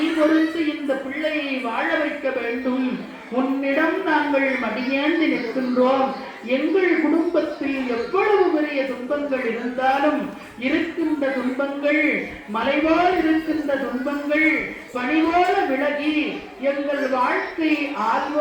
பொறுத்து இந்த பிள்ளையை வாழ வைக்க வேண்டும். உன்னிடம் நாங்கள் மடியேந்தி நிற்கின்றோம். எங்கள் குடும்பத்தில் எவ்வளவு பெரிய துன்பங்கள் இருந்தாலும், இருக்கின்ற துன்பங்கள் மலைபோல் இருக்கின்ற துன்பங்கள் பனிபோல விலகி எங்கள் வாழ்க்கை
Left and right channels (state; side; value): identical; both; correlation 1.00